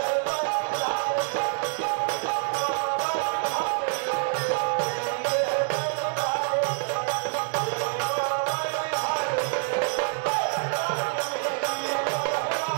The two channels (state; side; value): silent; left; digital silence